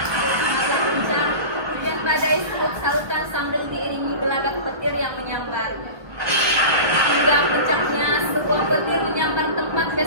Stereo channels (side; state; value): left; late; 1.4 ms